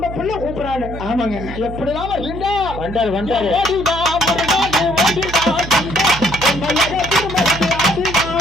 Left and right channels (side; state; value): right; noise; hum, 10 dB below the sound